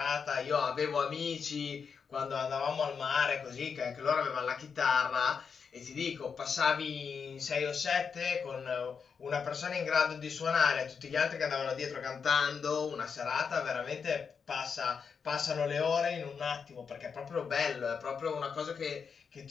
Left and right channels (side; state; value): right; quieter; 6.1 dB